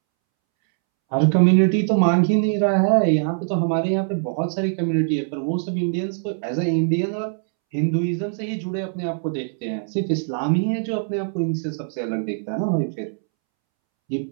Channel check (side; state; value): left; silent; 64 dB below the other